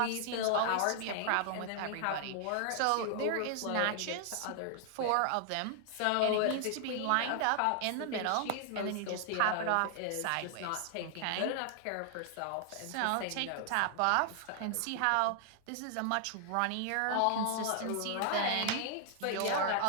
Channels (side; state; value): both; different; correlation 0.00